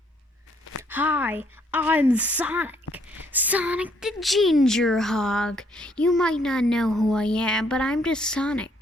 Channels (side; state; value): both; normal; correlation 0.67